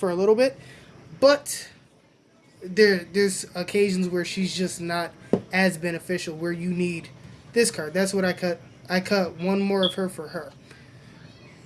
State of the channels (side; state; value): both; identical; correlation 1.00